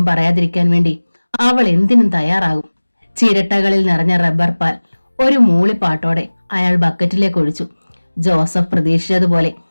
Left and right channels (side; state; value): both; inverted; correlation -1.00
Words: പറയാതിരിക്കാൻ വേണ്ടി അവൾ എന്തിനും തയ്യാറാകും. ചിരട്ടകളിൽ നിറഞ്ഞ റബ്ബർ പാൽ ഒരു മൂളിപ്പാട്ടോടെ അയാൾ ബക്കറ്റിലേക്ക് ഒഴിച്ചു. ജോസഫ് പ്രതീക്ഷിച്ചതുപോലെ